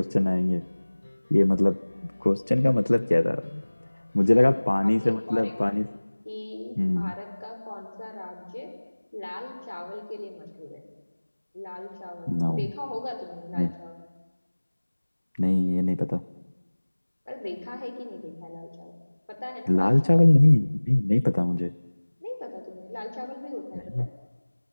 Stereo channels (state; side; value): inverted; both; correlation -1.00